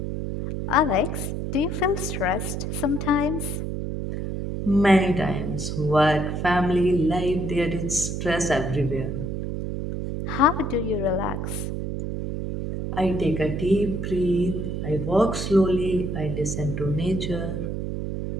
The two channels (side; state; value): right; noise; hum, 3 dB below the sound